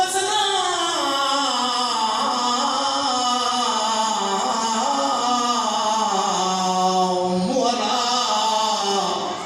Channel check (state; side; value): identical; both; correlation 1.00